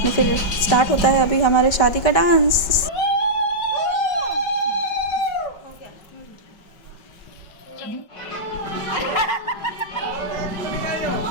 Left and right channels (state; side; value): late; right; 5.4 ms